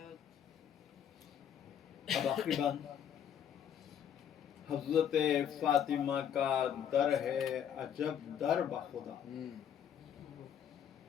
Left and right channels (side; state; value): right; quieter; 9.0 dB